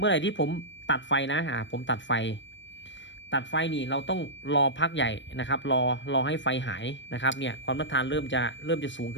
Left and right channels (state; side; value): late; right; 0.53 ms